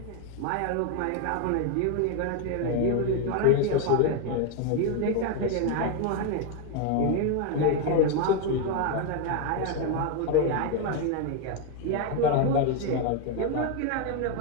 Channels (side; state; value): both; different; correlation 0.01